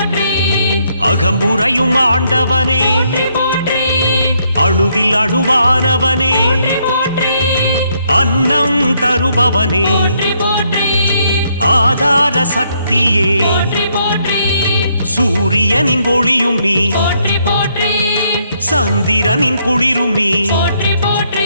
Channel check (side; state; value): both; inverted; correlation -0.72